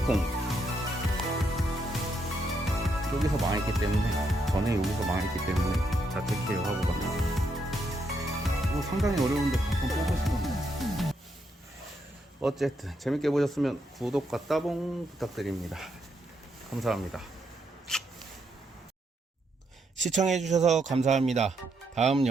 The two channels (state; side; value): normal; both; correlation 0.78